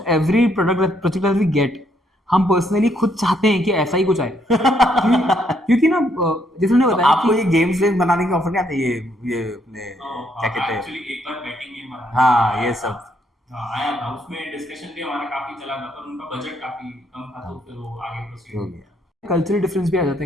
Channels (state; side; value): normal; both; correlation 0.72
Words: every project that we get, हम पर्सनली खुद चाहते हैं कि ऐसा ही कुछ आए। क्योंकि ना जैसे उन्होंने तो बताया आपको कि ये गेम्स वेम बनाने के ऑफर नहीं आते? ये अपने क्या कहते हैं, एक्चुअली एक बार बैटिंग गेम बना, हाँ ये सब आया था, उसमें डिस्कशन भी हमारा काफी चला था, पर उनका बजट काफी कम था, तो फिर वो आगे प्रोसीड हो हो गया। गया। कल्चरल डिफरेंस भी आ जाते